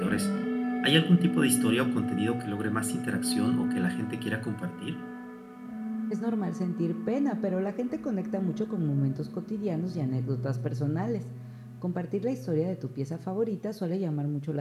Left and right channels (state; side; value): identical; both; correlation 1.00